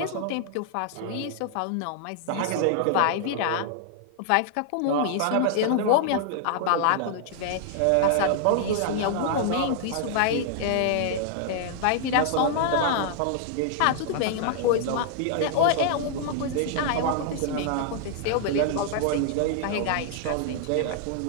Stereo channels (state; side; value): different; both; correlation -0.01